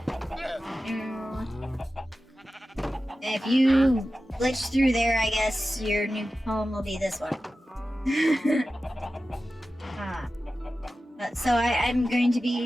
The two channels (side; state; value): both; normal; correlation 0.94